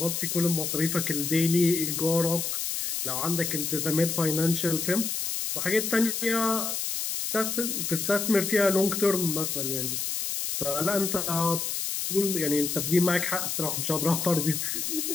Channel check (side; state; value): left; noise; hiss, 2 dB below the sound